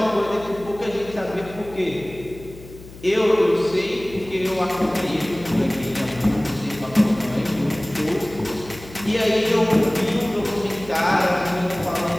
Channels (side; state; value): left; noise; hum, 17 dB below the sound